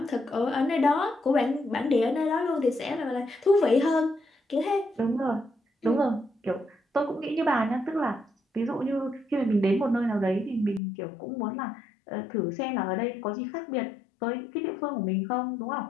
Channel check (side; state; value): right; drops out; at 10.8 s